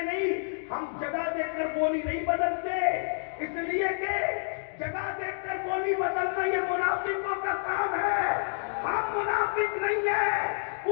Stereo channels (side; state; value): right; silent; digital silence